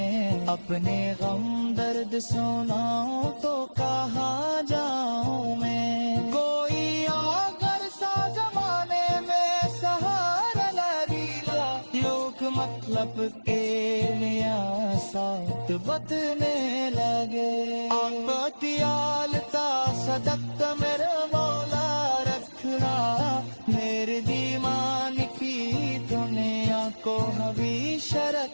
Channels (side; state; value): both; inverted; correlation -1.00